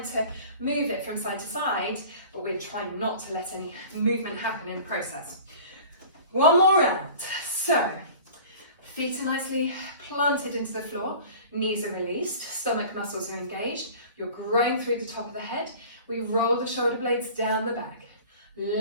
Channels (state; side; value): inverted; both; correlation -0.42